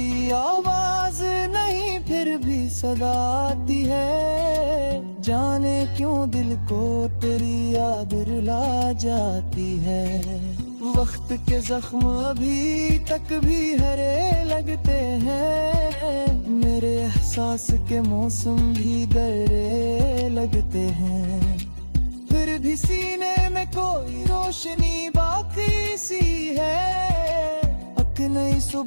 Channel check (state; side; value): inverted; both; correlation -1.00